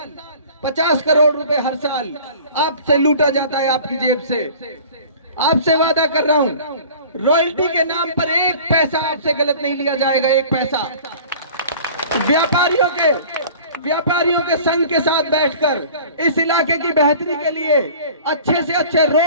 50 करोड़ रुपए हर साल आपसे लूटा जाता है, आपकी जेब से। आपसे वादा कर रहा हूं, रॉयल्टी के नाम पर 1 पैसा आपसे गलत नहीं लिया जाएगा, 1 पैसा। व्यापारियों के संघ के साथ बैठकर इस इलाके की बेहतरी के लिए अच्छे से अच्छे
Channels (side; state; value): both; inverted; correlation -0.44